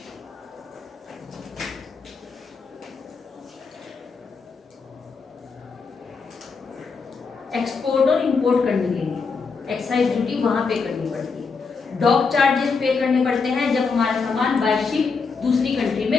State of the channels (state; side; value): quieter; right; 4.9 dB